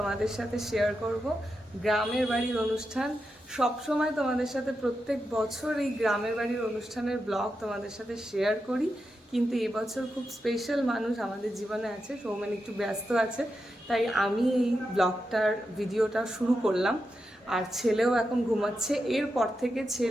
সাথে শেয়ার করব। গ্রামের বাড়ির অনুষ্ঠান সবসময় তোমাদের সাথে প্রত্যেক বছর এই গ্রামের বাড়ির অনুষ্ঠানের ব্লগ তোমাদের সাথে শেয়ার করি, কিন্তু এবছর খুব স্পেশাল মানুষ আমাদের জীবনে আছে। সৌমেন একটু ব্যস্ত আছে, তাই আমি এই ব্লগটার ভিডিওটা শুরু করলাম। আর ছেলেও এখন ঘুমাচ্ছে, এরপর থেকে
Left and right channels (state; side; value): normal; both; correlation 0.87